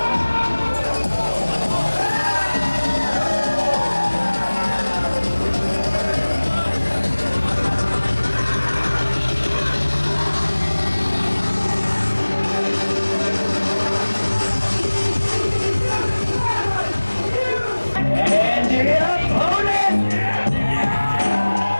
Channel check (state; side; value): inverted; both; correlation -1.00